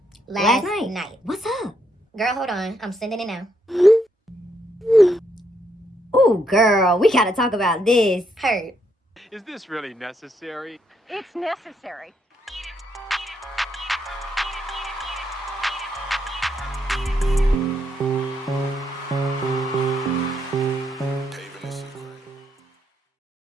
Last night. What's up? Girl, hold on. I'm sending it now. Ooh, girl, we gotta talk about this. Heard. Is this really necessary? It's necessary.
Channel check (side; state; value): both; normal; correlation 0.76